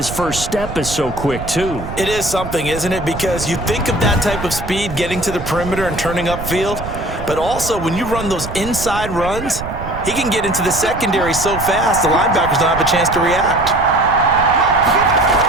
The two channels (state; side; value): noise; right; rumble, 9 dB below the sound